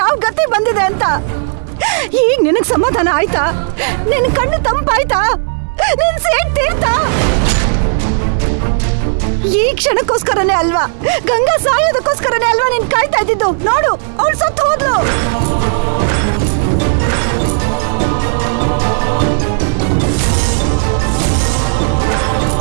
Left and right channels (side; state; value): left; silent; digital silence